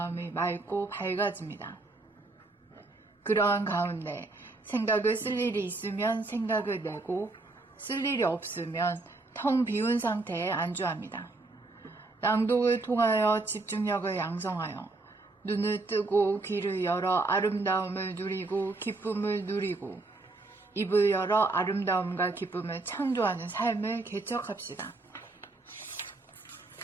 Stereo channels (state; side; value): quieter; left; 3.3 dB